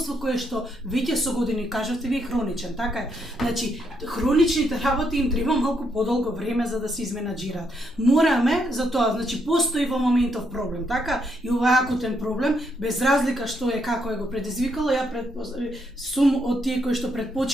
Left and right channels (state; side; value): normal; both; correlation 0.76